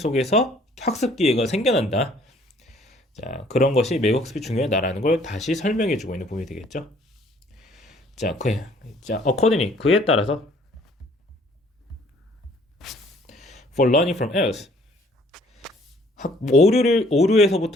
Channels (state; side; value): normal; both; correlation 0.59